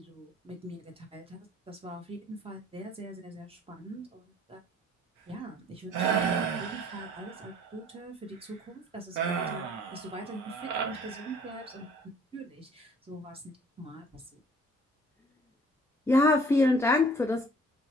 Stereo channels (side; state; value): both; normal; correlation 0.55